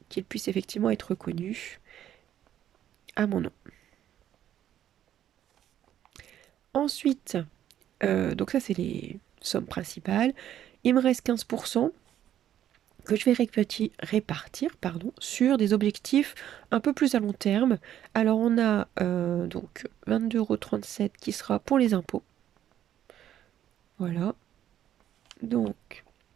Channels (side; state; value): left; quieter; 11.1 dB